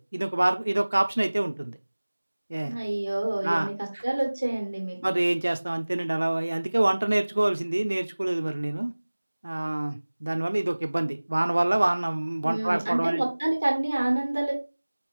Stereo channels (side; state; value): both; inverted; correlation -1.00